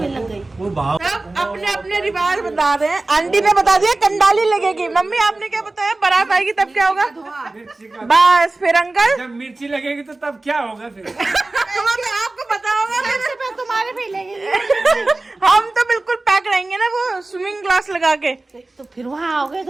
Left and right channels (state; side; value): quieter; left; 3.1 dB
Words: लग गई। सब अपने अपने रिवाज बता रहे हैं। आंटी ने बता दिया कंडाली लगेगी। मम्मी आपने क्या बताया? बारात आएगी तब क्या होगा? बस फिर अंकल जब मिर्ची लगेगी तो तब क्या होगा फिर? आपको पता होगा। तुम्हारे भी लगेगी। हम तो बिल्कुल पैक रहेंगे ना, वो स्विमिंग ग्लास लगा के। तो फिर वहाँ आओगे